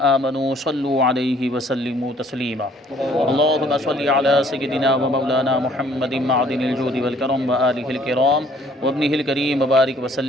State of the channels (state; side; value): normal; both; correlation 0.60